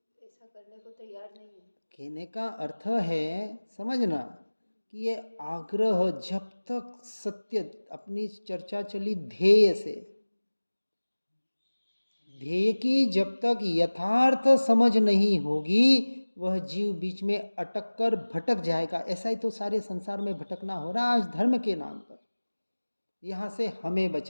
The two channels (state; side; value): inverted; both; correlation -1.00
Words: ऐसा करने को तैयार नहीं है। कहने का अर्थ है समझना कि ये आग्रह जब तक सत्य, अपनी चर्चा चली ध्येय से, ध्येय की जब तक यथार्थ समझ नहीं होगी वह जीव बीच में अटक कर भटक जाएगा। ऐसा ही तो सारे संसार में भटकना हो रहा है आज धर्म के नाम पर। यहाँ से हमें